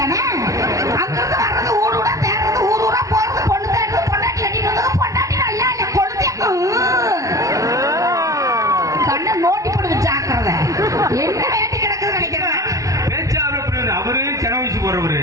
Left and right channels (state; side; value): late; left; 0.16 ms